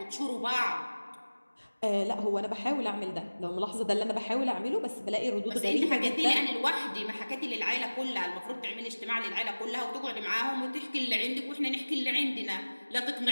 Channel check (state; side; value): inverted; both; correlation -1.00